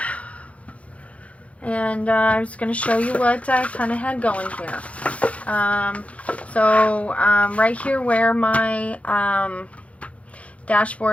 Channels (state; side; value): late; right; 0.064 ms